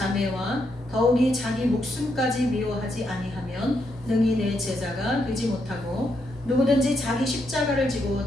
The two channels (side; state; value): both; normal; correlation 0.79